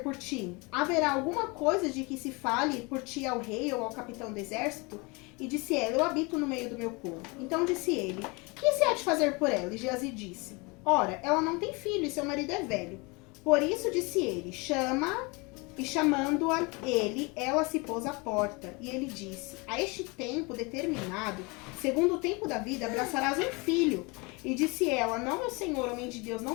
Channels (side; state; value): right; quieter; 27.8 dB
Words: por ti? Haverá alguma coisa de que se fale por ti ao rei ou ao capitão do exército? E disse ela, eu habito no meio do meu povo. Então disse ele, que se há de fazer por ela? E Geazi disse, ora, ela não tem filho e seu marido é velho. Por isso disse ele, chama, e chamando-a ele, ela se pôs à porta. E ele disse, a este tempo determinado, segundo o tempo da vida, abraçarás um filho. E disse ela, não, meu senhor, homem de Deus,